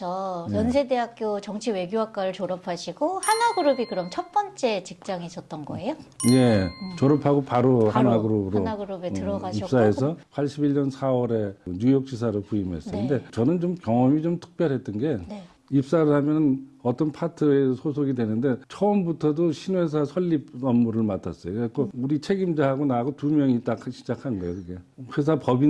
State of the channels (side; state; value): both; identical; correlation 1.00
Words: 네. 연세대학교 정치외교학과를 졸업하시고 한화그룹이 그럼 첫 번째 직장이셨던 거예요? 예, 졸업하고 바로 한화그룹으로 한화그룹에 들어가셨고 입사해서 81년 4월에 뉴욕지사로 부임했어요. 네. 근데 저는 좀 경험이 좀 특별했던 게 네. 입사를 하면 어떤 파트에 소속이 되는데 처음부터도 신회사 설립 업무를 맡았어요. 그래서 우리 책임자하고 나하고 두 명이 딱 시작한 거예요. 그게 회사